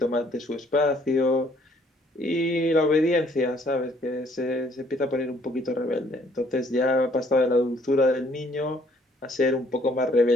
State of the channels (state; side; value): normal; both; correlation 0.63